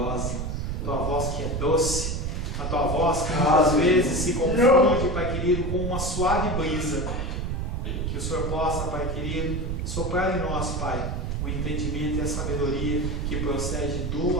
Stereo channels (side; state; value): right; noise; rumble, 2 dB below the sound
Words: a Tua voz que é doce, a Tua voz que muitas vezes se confunde, Pai querido, com uma suave brisa. Que o Senhor possa, Pai querido, soprar em nós, Pai, o entendimento e a sabedoria que procede do